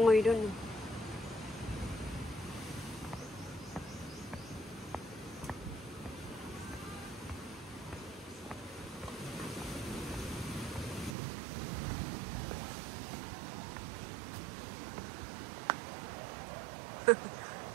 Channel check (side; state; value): left; drops out; at 11.2 s